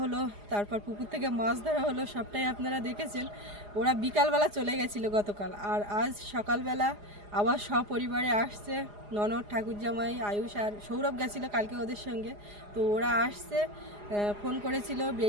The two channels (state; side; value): late; left; 4.9 ms